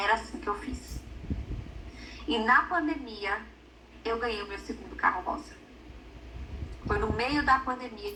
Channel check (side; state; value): both; identical; correlation 1.00